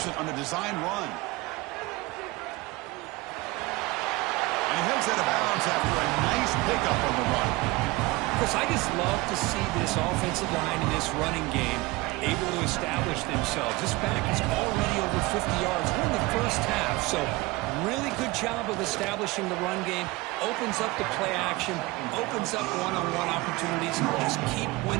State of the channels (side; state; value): left; quieter; 21.8 dB